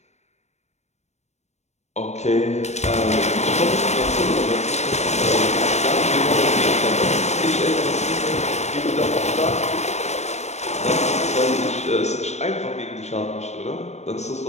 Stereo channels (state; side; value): late; right; 0.32 ms